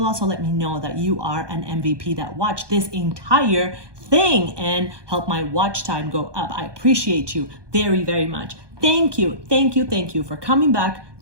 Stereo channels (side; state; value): left; late; 1.2 ms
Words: also let me know that you are an MVP that watched this entire thing and help my watch time go up. I appreciate you very, very much. Thank you, thank you, thank you for coming back.